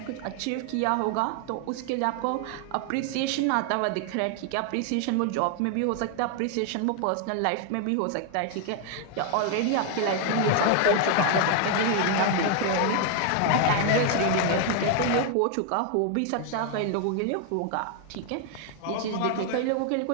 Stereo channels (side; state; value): both; different; correlation 0.00